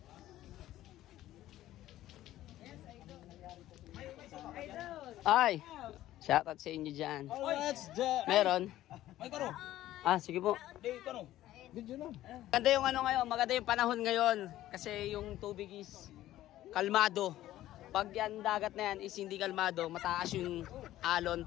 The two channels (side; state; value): right; quieter; 14.2 dB